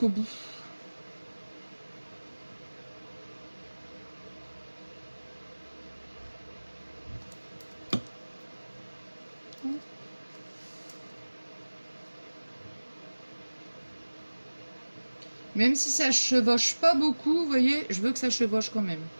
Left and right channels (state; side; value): inverted; both; correlation -1.00